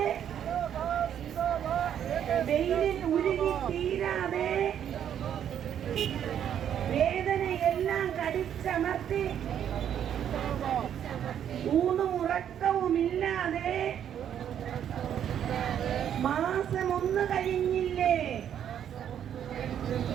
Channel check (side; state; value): left; quieter; 9.5 dB